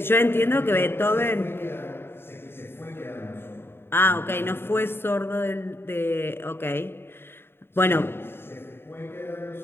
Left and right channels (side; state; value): right; late; 0.11 ms